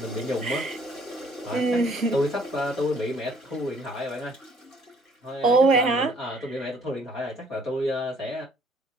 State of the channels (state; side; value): normal; both; correlation 0.61